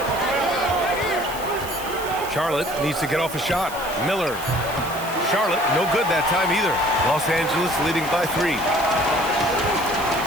Charlotte needs to get off a shot. Miller. Charlotte, no good that time either. Los Angeles leading by 3.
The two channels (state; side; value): noise; right; hiss, 14 dB below the sound